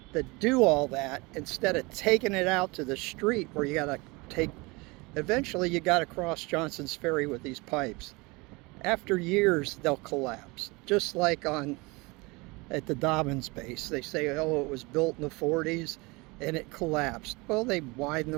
that do all that instead of taking it out to the street where you gotta eventually you gotta cross Johnson's Ferry with these pipes. After years, they'll collapse, just like at the Dobbins base. They say, oh, it was built in the 40s and it collapsed. Well, they widened the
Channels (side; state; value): left; quieter; 25.3 dB